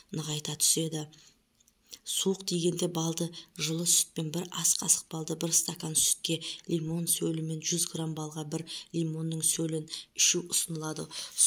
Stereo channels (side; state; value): both; identical; correlation 1.00